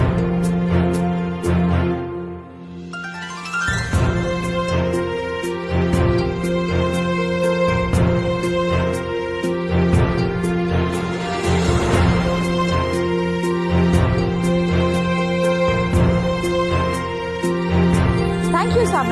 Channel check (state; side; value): identical; both; correlation 1.00